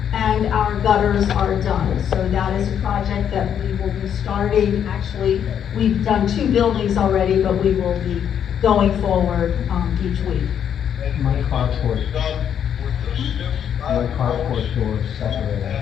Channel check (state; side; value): quieter; right; 8.8 dB